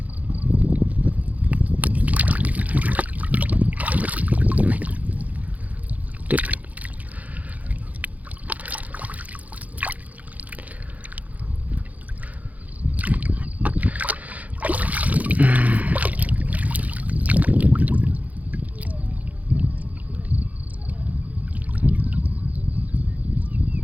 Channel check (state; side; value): late; left; 0.075 ms